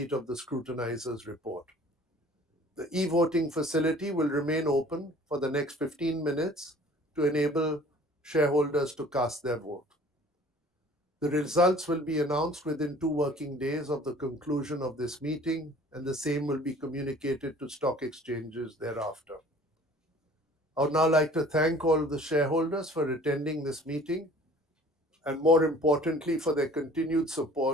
of the scrutinizer's report. The e-voting facility will remain open for the next 15 minutes to enable shareholders to cast their vote. The results will be announced within 2 working days of the conclusion of this meeting, and the same will be communicated to stock exchanges thereafter. I would now like to thank all the shareholders for attending this meeting, and more importantly, for their continued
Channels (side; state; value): both; normal; correlation 0.50